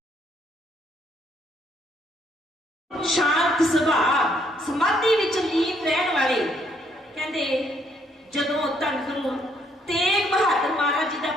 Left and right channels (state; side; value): normal; both; correlation 0.70